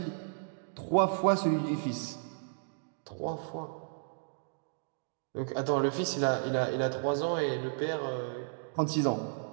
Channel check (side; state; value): left; silent; digital silence